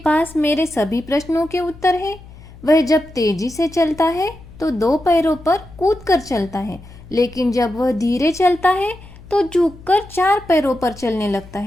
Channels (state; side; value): noise; left; hum, 19 dB below the sound